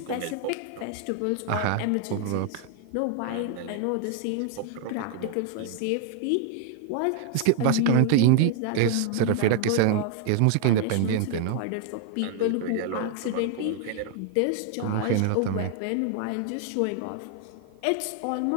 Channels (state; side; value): different; both; correlation 0.00